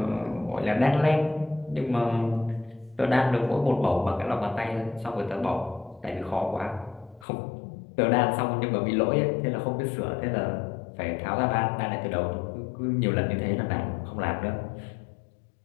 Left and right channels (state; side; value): drops out; right; at 7.2 s